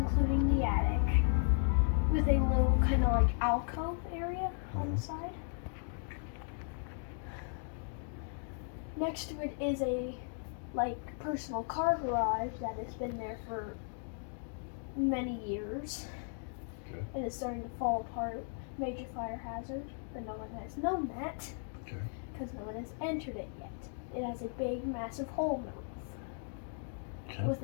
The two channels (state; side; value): silent; right; 54 dB below the other